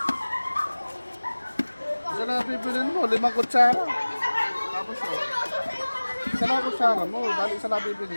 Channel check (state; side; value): inverted; both; correlation -1.00